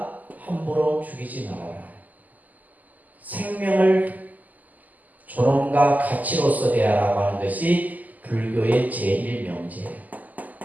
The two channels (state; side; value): late; left; 0.080 ms